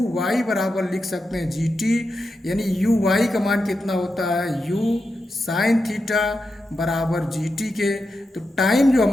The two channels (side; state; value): both; normal; correlation 0.88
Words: वाई बराबर लिख सकते हैं जी टी, यानी यू वाई का मान कितना होता है? यू साइन थीटा बराबर जी टी के। तो टाइम जो